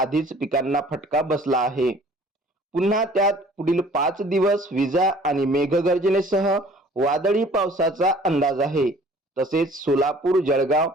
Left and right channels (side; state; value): both; normal; correlation 0.52